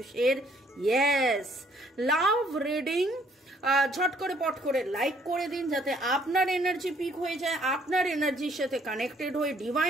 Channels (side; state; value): both; normal; correlation 0.64